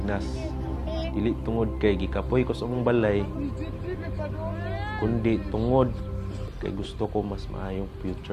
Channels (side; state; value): both; identical; correlation 1.00